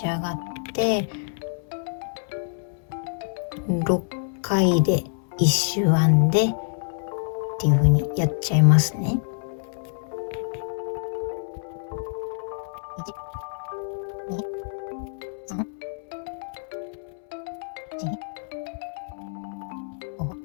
ち上がって6回で1周編んでっていう風にやっちゃいますね。1、2、3、4、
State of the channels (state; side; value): silent; right; 61 dB below the other